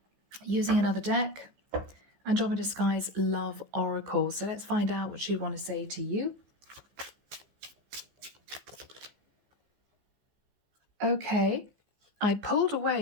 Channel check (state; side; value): late; left; 14 ms